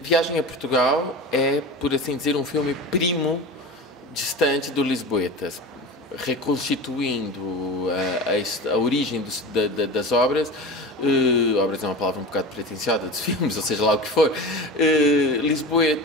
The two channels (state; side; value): normal; both; correlation 0.31